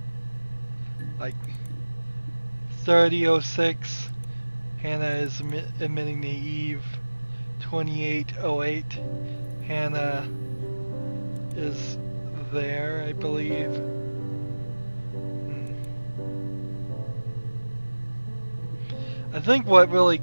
Like 30:06, Hannah is admitting to Eve. 28:08, Hannah is there, I believe. I think what really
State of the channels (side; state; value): both; inverted; correlation -1.00